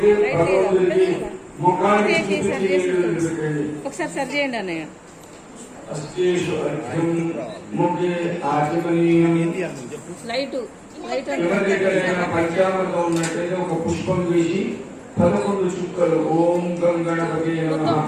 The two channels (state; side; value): identical; both; correlation 1.00